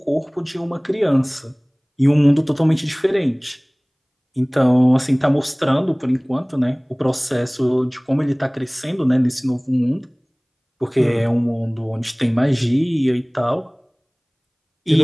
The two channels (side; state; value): both; identical; correlation 1.00